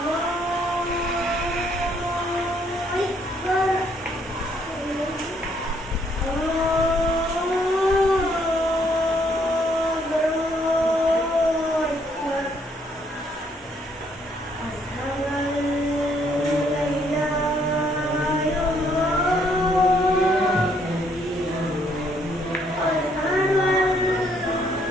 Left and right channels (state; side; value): normal; both; correlation 0.68